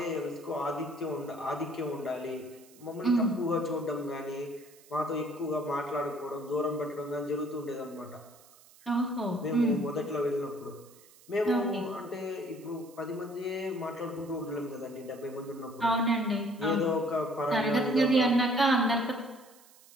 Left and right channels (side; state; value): right; noise; hiss, 25 dB below the sound